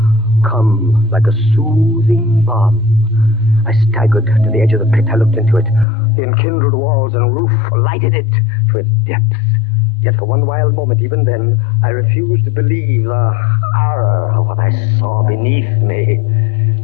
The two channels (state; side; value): drops out; right; at 5.9 s